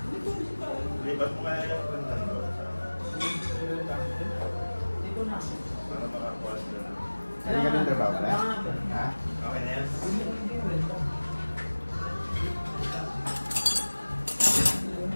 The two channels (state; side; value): inverted; both; correlation -1.00